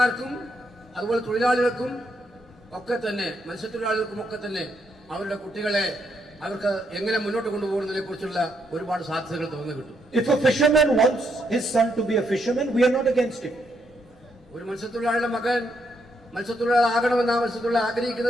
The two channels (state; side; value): normal; both; correlation 0.77